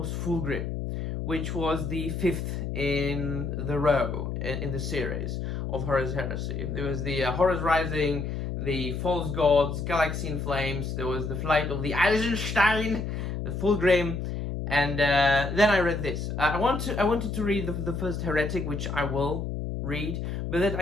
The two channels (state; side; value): noise; left; hum, 4 dB below the sound